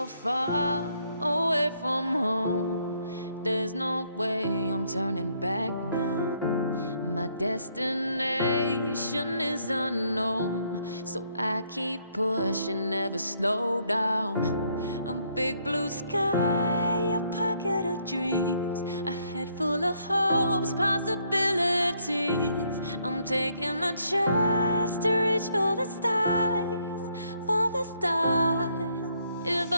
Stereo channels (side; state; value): both; inverted; correlation -0.71